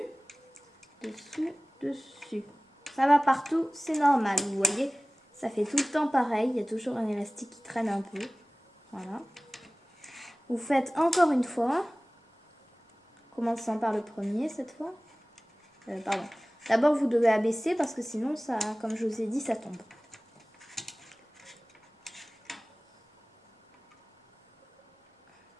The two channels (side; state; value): both; normal; correlation 0.97